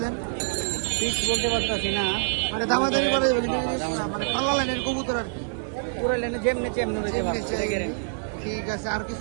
দেন? ফিক্স বলতে পারতাছি না, মানে দামাদামি করা যাবে কিন্তু মানে পাল্লা লাইনের কবুতর আর কি, পুরো লেনে যেমনি ঠিক আছে। আর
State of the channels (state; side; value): silent; left; 61 dB below the other